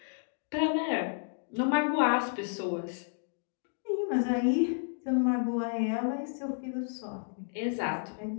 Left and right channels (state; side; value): silent; right; digital silence